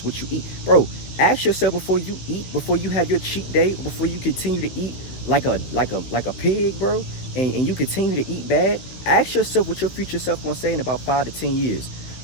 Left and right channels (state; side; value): late; right; 16 ms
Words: what you eat. Bro, ask yourself before you eat, before you have your cheat day, before you continue to eat like a pig, bro, and you continue to eat bad, ask yourself what your future self gonna say in about 5 to 10 years.